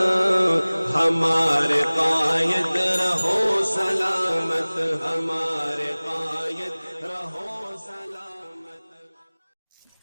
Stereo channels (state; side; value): inverted; both; correlation -1.00